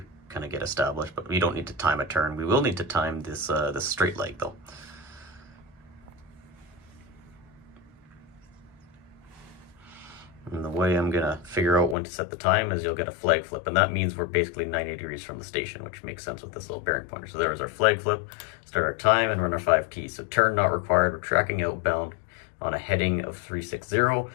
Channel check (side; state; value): right; drops out; at 12.0 s